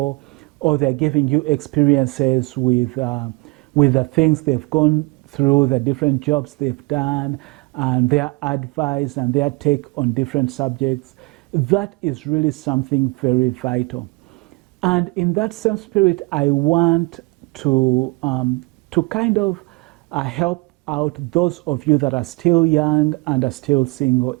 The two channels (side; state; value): left; quieter; 26.7 dB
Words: or they're giving you experiences with the things they've gone through, the different jobs they've done, and their advice and their take on different subjects. That is really something very vital. And in that same spirit, I want to kind of help out those of you that are still young and are still single.